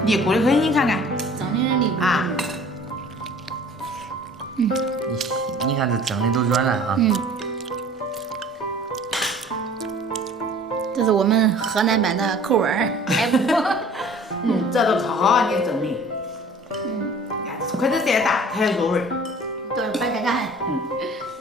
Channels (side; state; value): both; normal; correlation 0.48